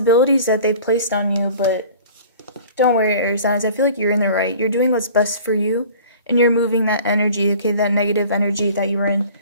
that they've placed on you. But don't worry, air signs. I feel like you're in the right. You're doing what's best for you, and you're moving that energy, okay, that negative energy that you were in.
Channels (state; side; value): inverted; both; correlation -0.46